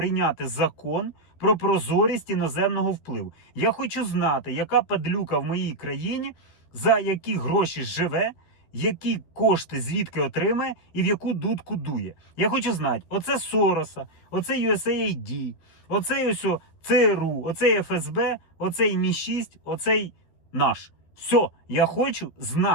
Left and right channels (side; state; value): right; late; 12 ms